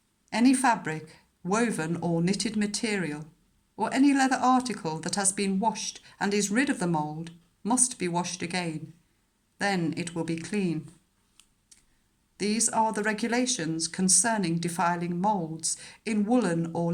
Any fabric, woven or knitted material, or any leather article that has been washed and is rid of the mould must be washed again. Then it will be clean. These are the regulations concerning defiling moulds in woolen or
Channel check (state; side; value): identical; both; correlation 1.00